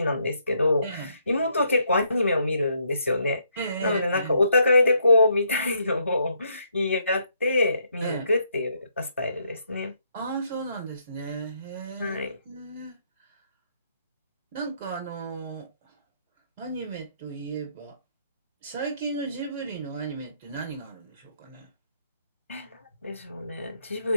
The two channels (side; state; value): both; inverted; correlation -0.73